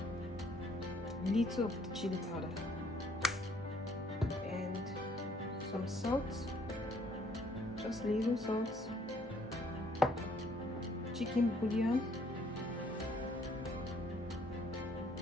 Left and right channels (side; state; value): both; normal; correlation 0.63